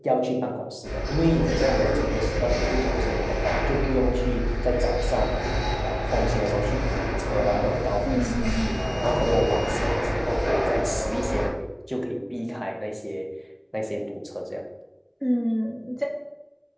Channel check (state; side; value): identical; both; correlation 1.00